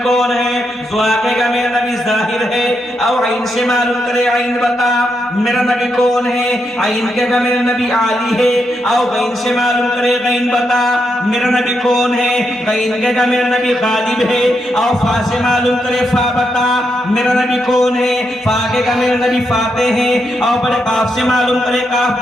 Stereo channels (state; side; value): normal; both; correlation 0.82